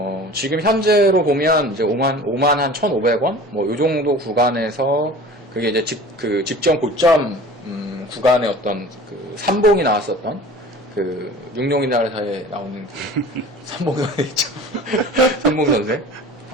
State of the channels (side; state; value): both; normal; correlation 0.41